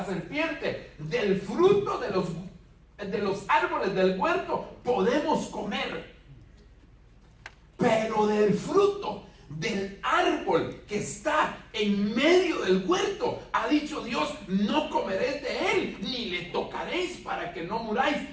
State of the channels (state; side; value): identical; both; correlation 1.00